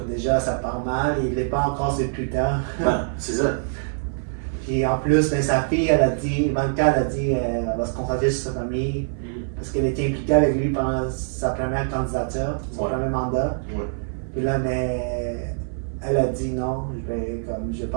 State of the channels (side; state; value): left; silent; 58 dB below the other